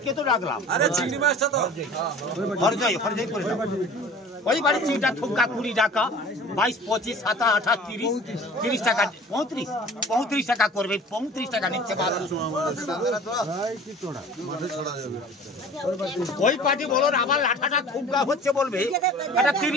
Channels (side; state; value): both; normal; correlation 0.44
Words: তো রাখলাম আরে চিংড়ি মাছটা তো হরজয় করে দাও। ওই বাড়ি চিংড়া ঠুমকা 20 টাকা, 22, 25, 27, 28, 30, 30 টাকা, 35 টাকা করবে, 35 টাকা নিচ্ছে বাছুর। ওই পার্টি বলো আবার লাঠাটা ঠুমকা হচ্ছে বলবে এটা